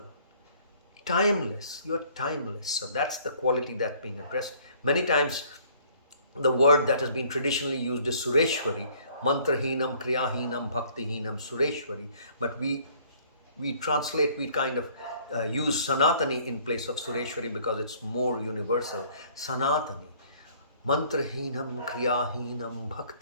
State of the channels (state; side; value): inverted; both; correlation -0.58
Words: Timeless. You're timeless. So that's the quality that's being addressed. Many times the word that has been traditionally used is Sureshwari, mantrahinam, kriyahinam, bhaktihinam, sureshwari. But we translate, we kind of use Sanatani in place of Sureshwari because it's more universal. Sanatani. Mantrahinam, kriyahinam,